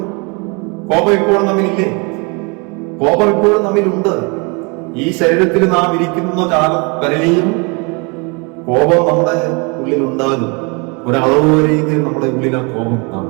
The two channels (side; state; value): left; quieter; 31.0 dB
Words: കോപം ഇപ്പോഴും നമ്മിലില്ലേ? കോപം ഇപ്പോഴും നമ്മിലുണ്ട്. ഈ ശരീരത്തിൽ നാം ഇരിക്കുന്ന കാലം വരെയും കോപം നമ്മുടെ ഉള്ളിൽ ഉണ്ടാകും. ഒരളവ് വരെയെങ്കിലും നമ്മുടെ ഉള്ളിൽ ആ കോപം